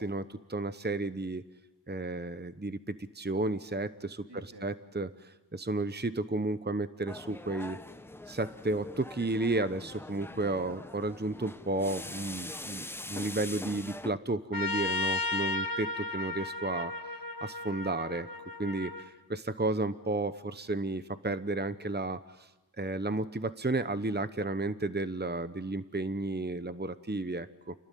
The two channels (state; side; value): normal; both; correlation 0.36